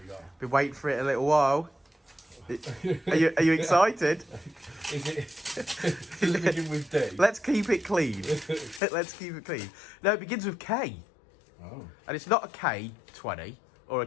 you got? Been waiting for it a little while. Are you excited? Is it begin with D? Let's keep it clean. Let's keep it clean. No, it begins with K. Oh. And it's not a K20 or a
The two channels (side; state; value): right; drops out; at 8.8 s